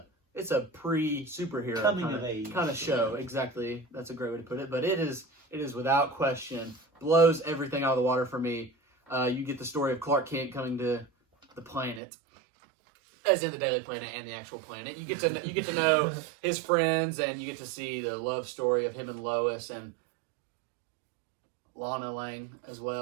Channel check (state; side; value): drops out; left; at 12.0 s